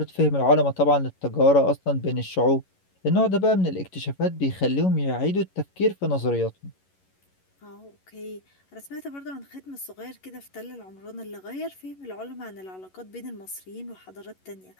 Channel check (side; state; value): right; late; 11 ms